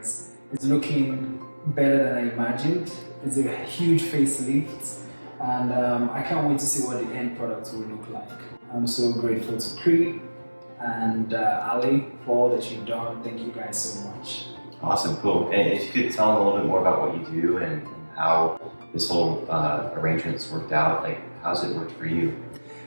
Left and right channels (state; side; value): inverted; both; correlation -1.00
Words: It's looking better than I imagined. It's a huge facelift, and I can't wait to see what the end product will look like. I'm so grateful to Cree and Ali for all that you've done. Thank you guys so much. Awesome, cool. And if you could tell them a little bit more about what you do and how this whole arrangement's worked out, like how's it worked for you?